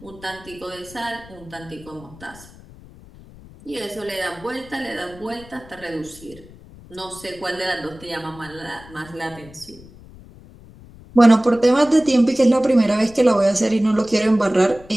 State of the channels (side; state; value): left; noise; rumble, 21 dB below the sound